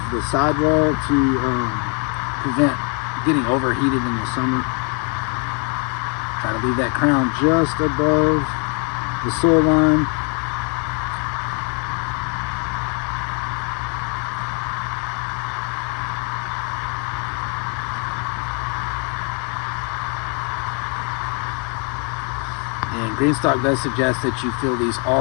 the sidewall to prevent getting overheated in the summer. Try to leave that crown just above the soil line. And Greenstalk does suggest that you fill these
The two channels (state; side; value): quieter; right; 36.5 dB